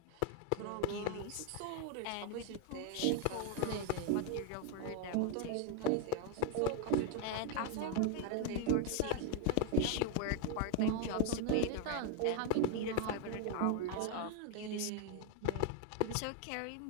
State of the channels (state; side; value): different; both; correlation 0.01